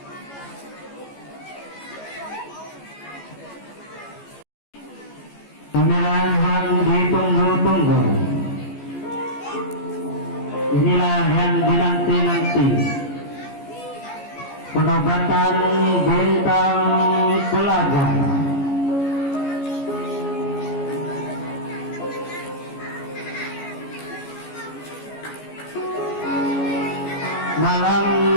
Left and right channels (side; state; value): right; late; 14 ms